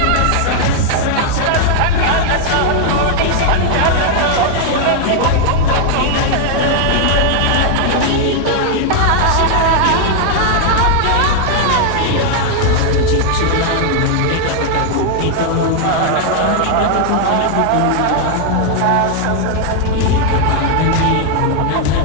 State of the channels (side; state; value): both; different; correlation 0.00